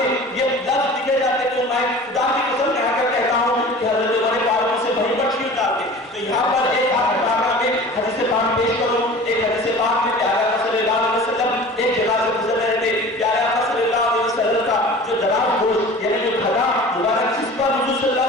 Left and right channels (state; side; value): normal; both; correlation 0.40